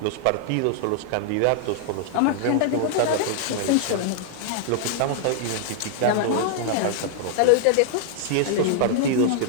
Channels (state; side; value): different; both; correlation -0.01